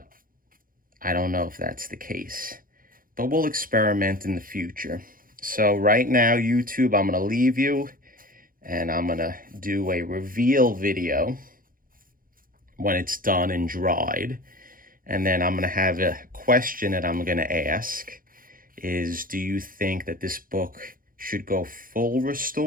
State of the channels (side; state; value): left; late; 0.41 ms